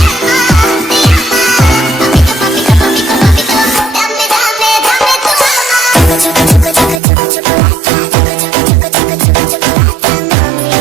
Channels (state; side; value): drops out; left; at 7.0 s